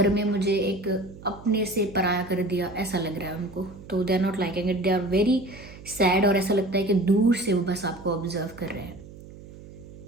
में मुझे एक अपने से पराया कर दिया, ऐसा लग रहा है उनको। तो they are not liking it, they are very sad, और ऐसा लगता है कि दूर से वो बस आपको ऑब्जर्व कर रहे हैं।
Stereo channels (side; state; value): right; noise; hum, 17 dB below the sound